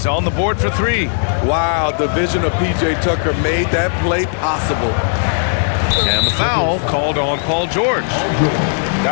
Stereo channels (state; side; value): silent; right; digital silence